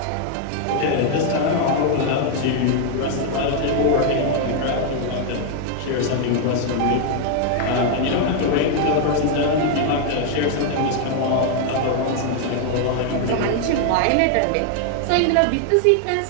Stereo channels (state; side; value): different; both; correlation 0.00